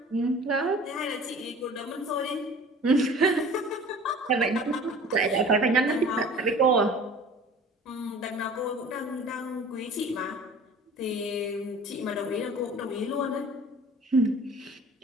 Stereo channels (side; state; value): both; normal; correlation 0.44